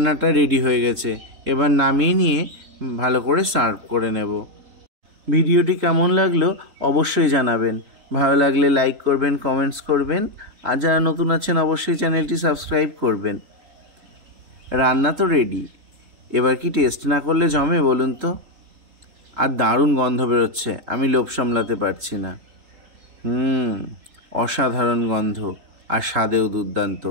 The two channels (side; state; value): left; late; 3.7 ms